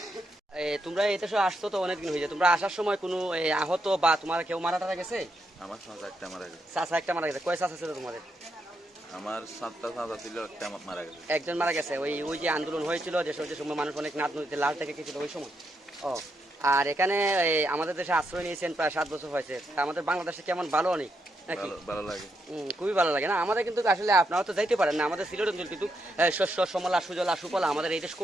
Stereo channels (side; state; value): both; normal; correlation 0.81